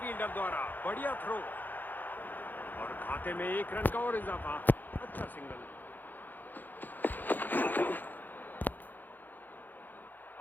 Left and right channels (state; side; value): late; right; 0.087 ms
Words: द्वारा, बढ़िया थ्रो। और खाते में 1 रन का और इजाफा। अच्छा सिंगल।